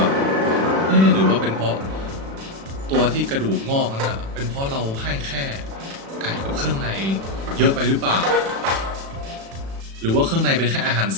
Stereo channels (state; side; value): late; left; 36 ms